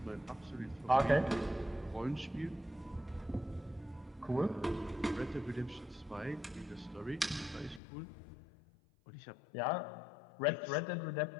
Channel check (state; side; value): drops out; right; at 7.8 s